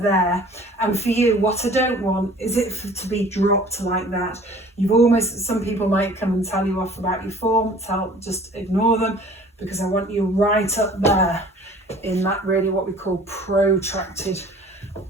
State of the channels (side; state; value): both; normal; correlation 0.49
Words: And for you, what I don't want is it to be dropped like that. You've almost, some people might come and tell you off about your form, just ignore them, because I want you right up there in that really what we call protracted